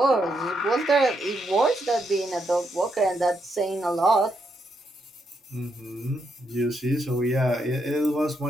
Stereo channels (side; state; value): both; normal; correlation 0.79